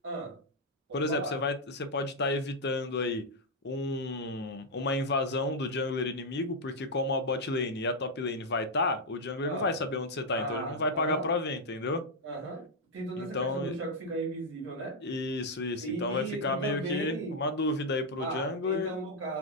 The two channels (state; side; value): normal; both; correlation -0.01